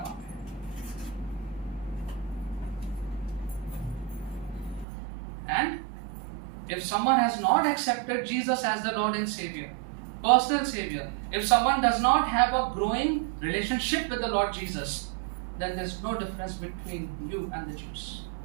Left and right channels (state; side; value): drops out; left; at 4.9 s